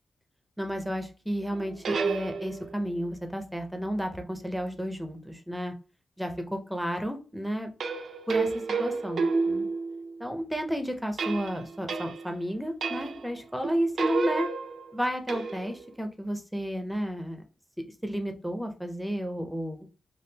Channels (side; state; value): both; normal; correlation 0.93